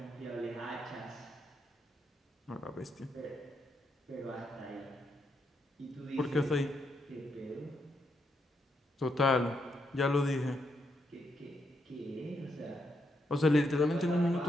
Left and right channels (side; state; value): both; normal; correlation 0.79